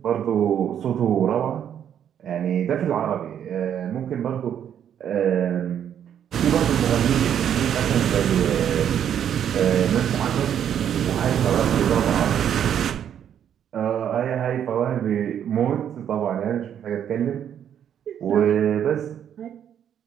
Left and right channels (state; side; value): quieter; left; 9.3 dB